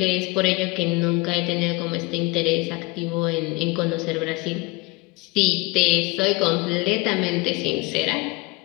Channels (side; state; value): right; quieter; 24.5 dB